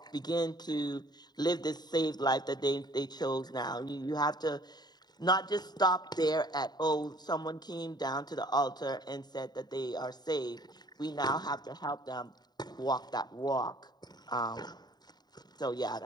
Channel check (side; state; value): right; late; 0.20 ms